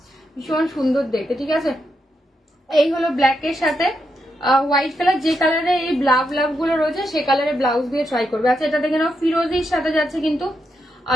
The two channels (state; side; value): normal; both; correlation 0.83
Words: ভীষণ সুন্দর দেখতে, ঠিক আছে। এই হলো ব্ল্যাক এর সাথে হোয়াইট কালার, যে কালারে এই লাভ লাভ গুলো রয়েছে সে কালারে ব্লাউজ দিয়ে ট্রাই করবে। আচ্ছা এটা দেখে নাও, ফিরোজির সাথে যাচ্ছে কিন্তু